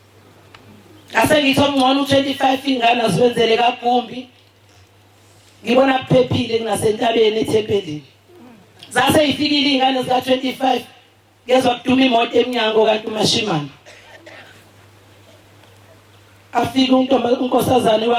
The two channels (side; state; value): both; identical; correlation 1.00